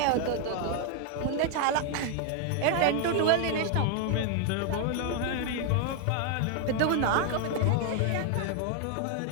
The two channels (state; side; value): different; both; correlation 0.01